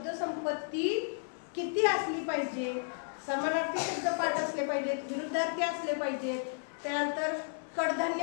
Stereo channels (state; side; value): silent; right; digital silence